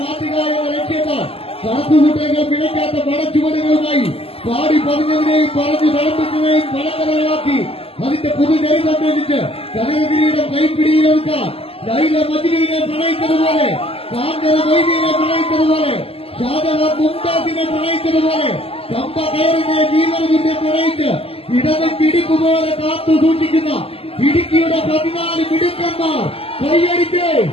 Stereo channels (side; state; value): right; late; 0.28 ms